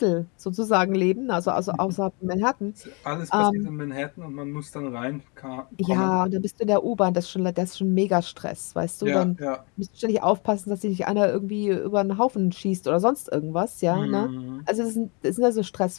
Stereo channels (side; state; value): right; quieter; 31.9 dB